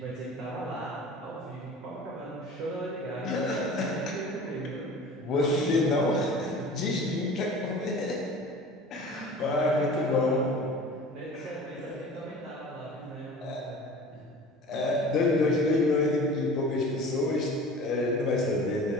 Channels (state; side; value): normal; both; correlation 0.40